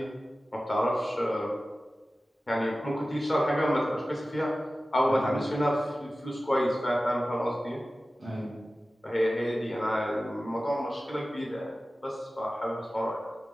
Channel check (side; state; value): both; normal; correlation 0.96